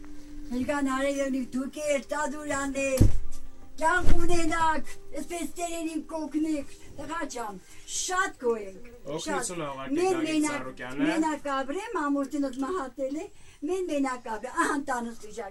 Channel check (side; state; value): both; identical; correlation 1.00